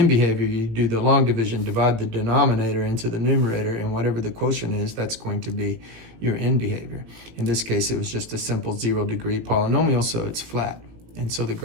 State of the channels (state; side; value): late; left; 18 ms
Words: behavior, you do the long division, divide the denominator into the numerator, and whatever the quotient is, that's going to be your end behavior. In this case, it was just a simple 0-degree polynomial, so it's flat. And so the